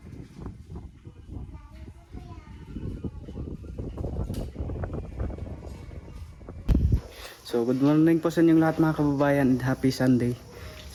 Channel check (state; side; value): identical; both; correlation 1.00